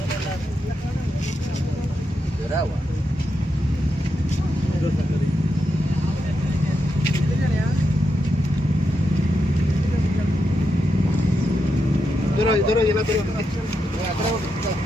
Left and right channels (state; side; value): normal; both; correlation 0.85